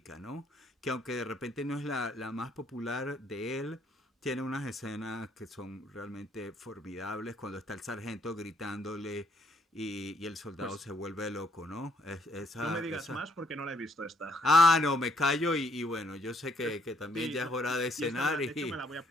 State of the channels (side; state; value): both; normal; correlation 0.68